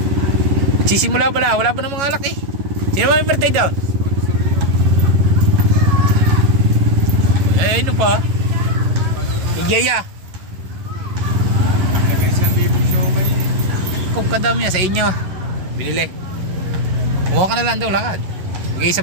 Sisimula pala, wala pa ng mga alak eh. Sino ba may birthday down? Eh, ano pa? Igaya. Nagay 1,000 show kayo eh. Kung kadami yan sa inyo. Binili. Kumuha ka na lang daw, lakad. Magay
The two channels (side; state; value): left; late; 11 ms